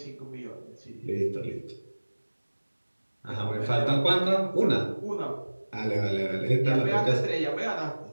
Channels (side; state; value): both; inverted; correlation -1.00